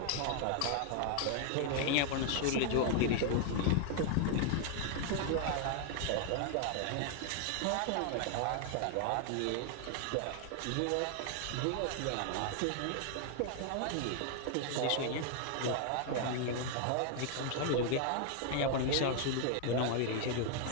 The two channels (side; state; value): both; different; correlation 0.00